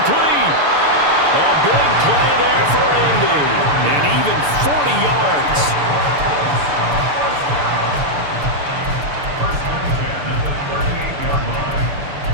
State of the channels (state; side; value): late; left; 6.9 ms